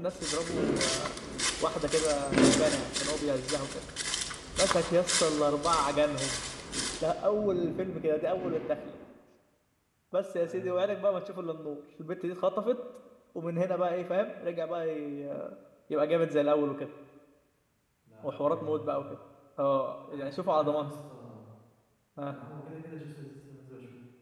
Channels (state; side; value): identical; both; correlation 1.00